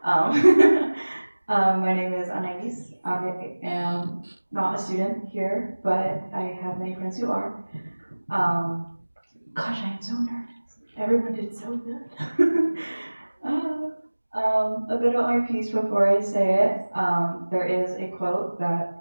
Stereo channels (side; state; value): both; inverted; correlation -1.00